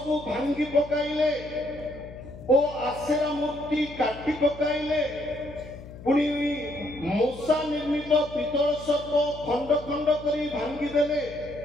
ଭାଙ୍ଗି ପକାଇଲେ ଓ ଆଶେରା ମୂର୍ତ୍ତି କାଟି ପକାଇଲେ। ପୁଣି ମୂଷା ନିର୍ମିତ ପିତ୍ତଳ ସର୍ପ ଖଣ୍ଡ ଖଣ୍ଡ କରି ଭାଙ୍ଗିଦେଲେ।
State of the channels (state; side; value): noise; left; hum, 15 dB below the sound